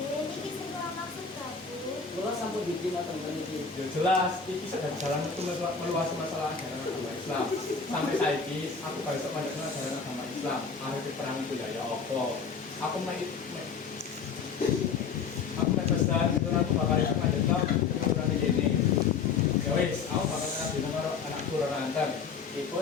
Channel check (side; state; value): right; quieter; 5.6 dB